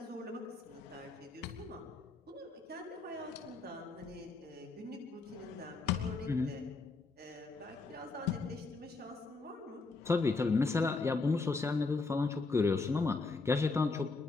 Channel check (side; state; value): right; quieter; 3.9 dB